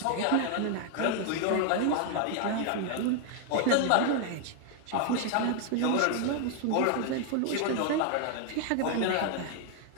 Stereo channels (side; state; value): both; different; correlation 0.00